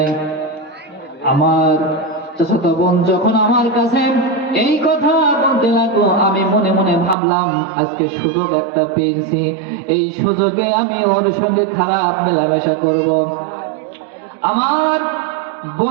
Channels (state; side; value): drops out; left; at 7.2 s